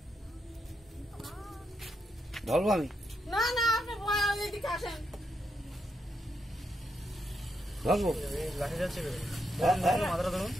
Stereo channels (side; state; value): both; normal; correlation 0.81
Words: ধরবো আমি? না না, আপনি এদিকে আসেন। ধরবো? লাঠি যাচ্ছে, মাথাটা ধরুন,